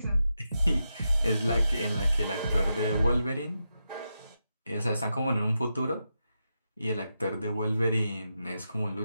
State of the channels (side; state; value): both; inverted; correlation -0.87